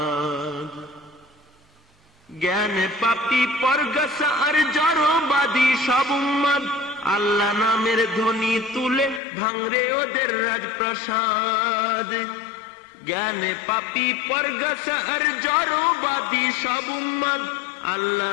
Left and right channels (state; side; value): drops out; right; at 9.2 s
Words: জ্ঞানে পাপী পরগাছা আর জড়বাদী সব উম্মাদ, আল্লাহ নামের ধ্বনি তুলে ভাঙরে ওদের রাজপ্রাসাদ। জ্ঞানে পাপী পরগাছা আর জড়বাদী সব উম্মাদ, আল্লাহ